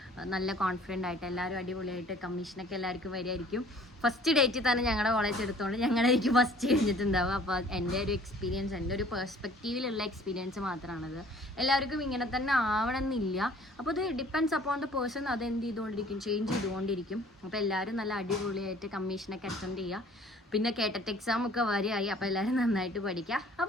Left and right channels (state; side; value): normal; both; correlation 0.52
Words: നല്ല കോൺഫിഡൻ്റ് ആയിട്ട് എല്ലാവരും അടിപൊളിയായിട്ട് കമ്മീഷനൊക്കെ എല്ലാവർക്കും വരുമായിരിക്കും. ഫസ്റ്റ് ഡേറ്റിൽ തന്നെ ഞങ്ങളുടെ കോളേജ് എടുത്തുകൊണ്ട് ഞങ്ങളായിരിക്കും ഫസ്റ്റ് കഴിഞ്ഞിട്ടുണ്ടാവുക. അപ്പോൾ എൻ്റെ ഒരു എക്സ്പീരിയൻസ്, എൻ്റെ ഒരു പെർസ്പെക്റ്റീവിലുള്ള എക്സ്പീരിയൻസ് മാത്രമാണത്. എല്ലാവർക്കും ഇങ്ങനെ തന്നെ ആവണമെന്നില്ല. അപ്പോൾ ഇത് ഡിപ്പെൻഡ്സ് അപ്പോൺ ദ പേഴ്സൺ, അത് എന്ത് ചെയ്തുകൊണ്ടിരിക്കും, ചേഞ്ച് ചെയ്തുകൊണ്ടിരിക്കും. അപ്പോൾ എല്ലാവരും നല്ല അടിപൊളിയായിട്ട് കമ്മീഷനൊക്കെ അറ്റൻഡ് ചെയ്യുക. പിന്നെ കേട്ടറ്റ് എക്സാം ഒക്കെ വരെയായി. അപ്പോൾ എല്ലാവരും നന്നായിട്ട് പഠിക്കുക.